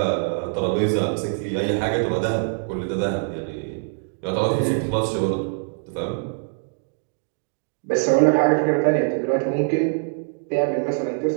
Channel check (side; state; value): left; silent; 63 dB below the other